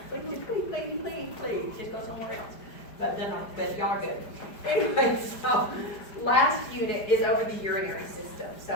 Please, just go somewhere else. But no, but y'all are good. Anyway, so last unit is over the urinary system.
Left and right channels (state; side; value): late; right; 5.0 ms